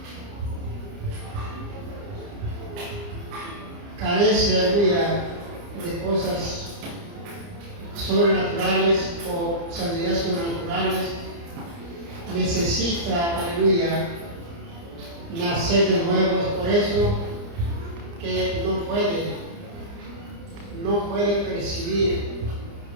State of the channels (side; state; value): left; late; 29 ms